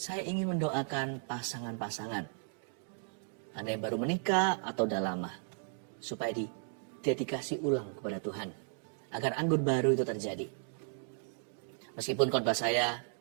ingin mendoakan pasangan-pasangan. Anda yang baru menikah atau udah lama, supaya didedikasi ulang kepada Tuhan, agar anggur baru itu terjadi. Meskipun khotbah saya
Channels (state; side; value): silent; left; 54 dB below the other